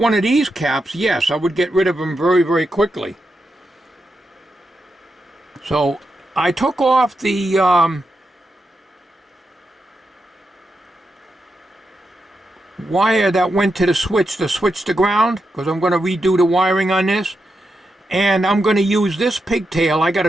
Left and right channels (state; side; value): normal; both; correlation 0.86